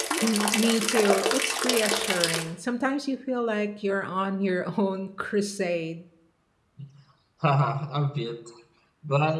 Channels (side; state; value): both; identical; correlation 1.00